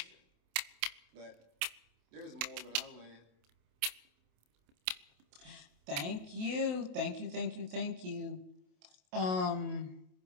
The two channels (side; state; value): left; late; 27 ms